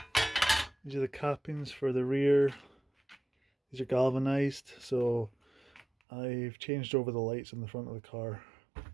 These are the cappings for the rear. These are galvanized, so I've changed over the lights on the front of the car.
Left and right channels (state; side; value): drops out; left; at 5.9 s